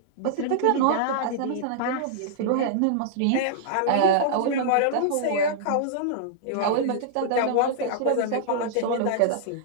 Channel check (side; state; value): both; different; correlation -0.02